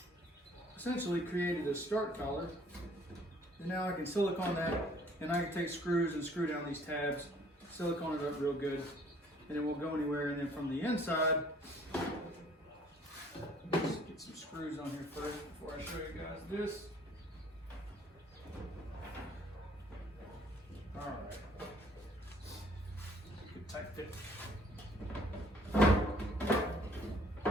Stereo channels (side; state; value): both; normal; correlation 0.58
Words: essentially created a start collar. And now I can silicone that, and I can take screws and screw down these tabs, silicone it up real good, and it won't go anywhere. And then from the inside, let's get some screws on here first before I show you guys this. All right, good tight fit.